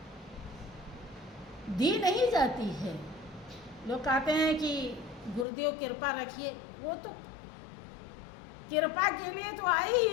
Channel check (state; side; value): drops out; right; at 5.5 s